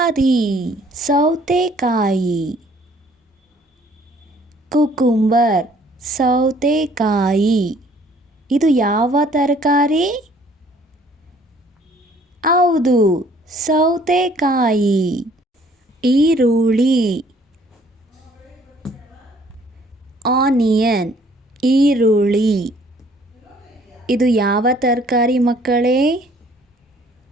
ಸೌತೆಕಾಯಿ. ಕುಕುಂಬರ್ ಸೌತೆಕಾಯಿ. ಇದು ಯಾವ ತರಕಾರಿ? ಹೌದು, ಸೌತೆಕಾಯಿ. ಈರುಳ್ಳಿ ಆನಿಯನ್ ಈರುಳ್ಳಿ. ಇದು ಯಾವ ತರಕಾರಿ ಮಕ್ಕಳೇ?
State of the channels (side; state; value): both; normal; correlation 0.59